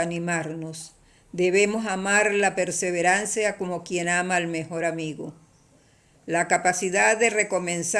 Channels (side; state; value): both; identical; correlation 1.00